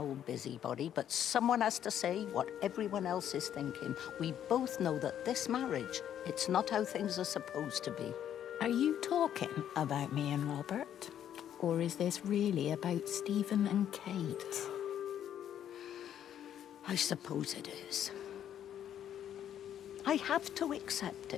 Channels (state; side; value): quieter; right; 10.2 dB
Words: busybody, but someone has to say what everyone else is thinking. We both know that this marriage, it's not how things are supposed to be. Are you talking about me and Robert? Or is this really about Stephen and Kate? I suppose it is. I have to accept